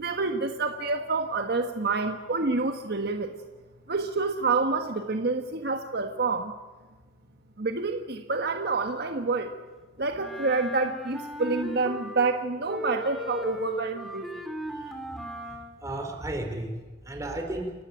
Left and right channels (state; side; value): quieter; left; 3.0 dB